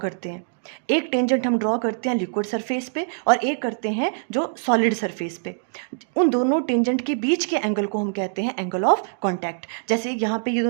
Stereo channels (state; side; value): silent; left; digital silence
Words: हैं। एक टेंजेंट हम ड्रॉ करते हैं लिक्विड सरफेस पे और एक करते हैं जो सॉलिड सरफेस पे। उन दोनों टेंजेंट के बीच के एंगल को हम कहते हैं एंगल ऑफ कांटेक्ट। जैसे यहाँ पे ये